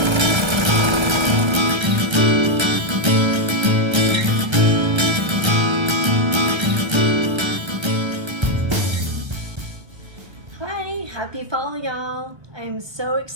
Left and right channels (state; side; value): late; left; 1.3 ms